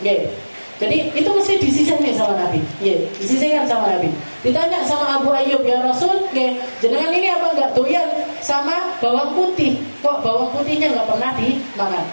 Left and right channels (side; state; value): both; inverted; correlation -1.00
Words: Jadi itu mesti disisihkan sama Nabi, disisihkan sama Nabi. Ditanya sama Abu Ayyub, ya Rasul, jenengan ini apa nggak doyan sama bawang putih? Kok bawang putihnya nggak pernah dimakan?